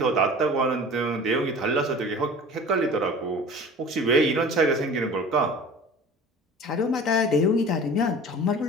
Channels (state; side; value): normal; both; correlation 0.40